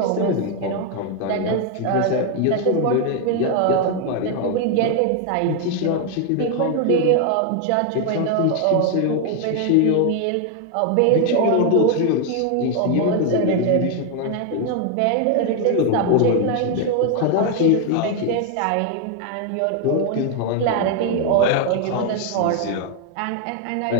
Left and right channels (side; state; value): both; different; correlation 0.01